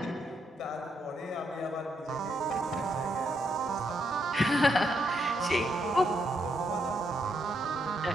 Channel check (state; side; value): normal; both; correlation 0.78